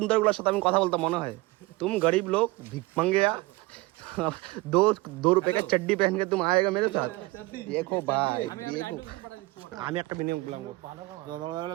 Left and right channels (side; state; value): left; quieter; 21.6 dB